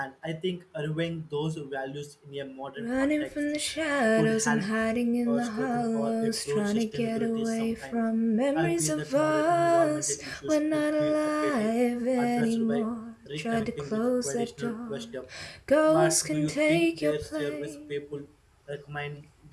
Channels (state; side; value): identical; both; correlation 1.00